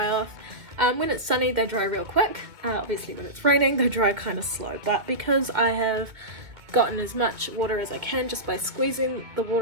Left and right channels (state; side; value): late; left; 2.2 ms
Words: off. When it's sunny they dry real quick. Obviously when it's raining they dry kind of slow, but because I have gotten as much water as I can just by squeezing the